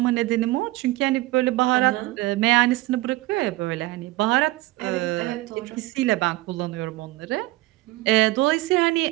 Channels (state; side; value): quieter; left; 19.1 dB